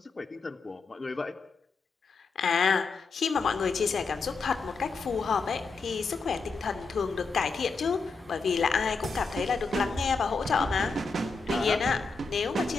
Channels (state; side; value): quieter; right; 4.4 dB